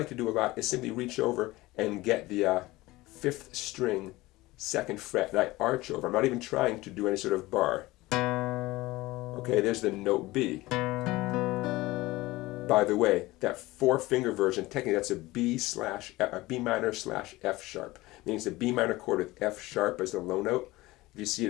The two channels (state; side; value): quieter; right; 19.5 dB